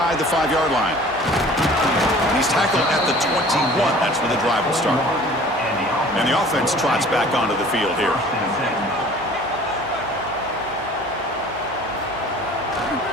the 5-yard line. He's tackled at the 21. That's where the drive will start. And the offense trots back onto the field here.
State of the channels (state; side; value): noise; right; hum, 20 dB below the sound